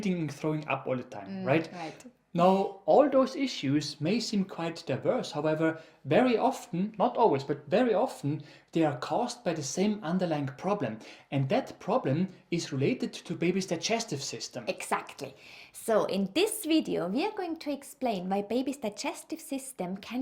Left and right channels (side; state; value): both; identical; correlation 1.00